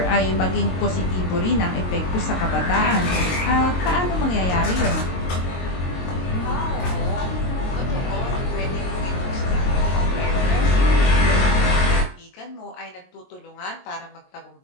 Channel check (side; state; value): right; late; 22 ms